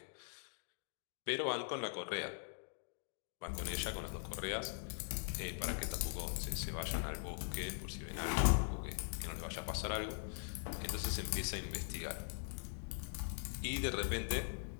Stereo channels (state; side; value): silent; right; digital silence